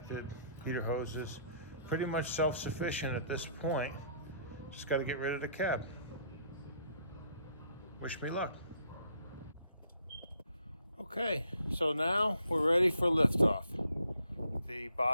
heater hoses, pretty much self-sufficient at this point. Just got to get rid of the cab. Wish me luck. Okay, so now we're ready for liftoff. The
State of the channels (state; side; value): inverted; both; correlation -0.65